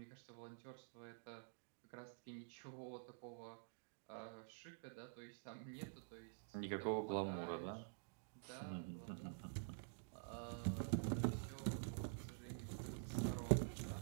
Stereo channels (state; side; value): silent; left; digital silence